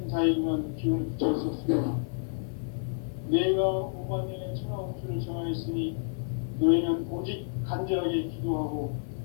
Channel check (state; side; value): silent; right; 56 dB below the other